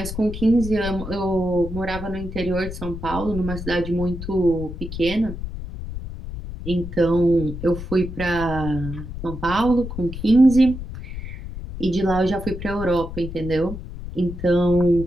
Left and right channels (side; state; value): left; noise; rumble, 9 dB below the sound